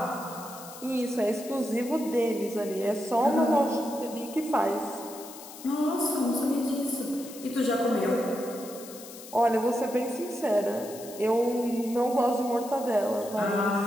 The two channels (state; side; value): noise; left; hiss, 15 dB below the sound